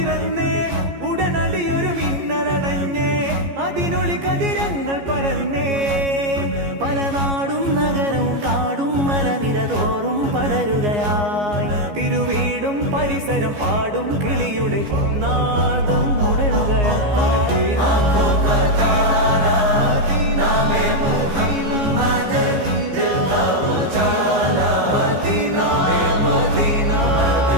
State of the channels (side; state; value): left; late; 14 ms